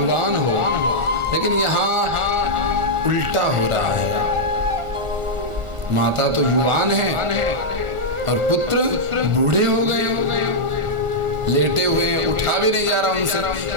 हो, लेकिन यहाँ उल्टा हो रहा है। माता तो युवान है और पुत्र बूढ़े हो गए, लेटे हुए हैं, उठा भी नहीं जा रहा उनसे,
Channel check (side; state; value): left; late; 1.4 ms